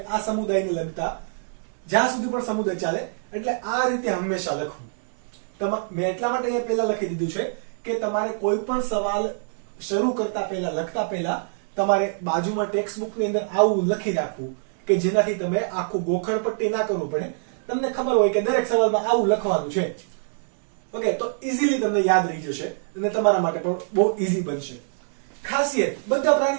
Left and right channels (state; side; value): silent; left; digital silence